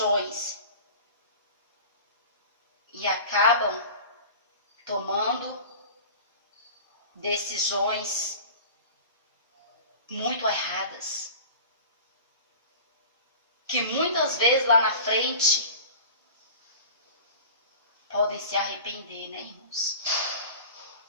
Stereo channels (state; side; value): inverted; both; correlation -0.38